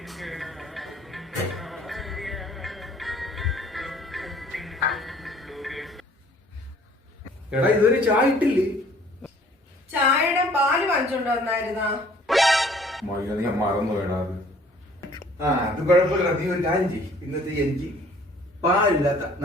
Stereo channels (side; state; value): both; normal; correlation 0.56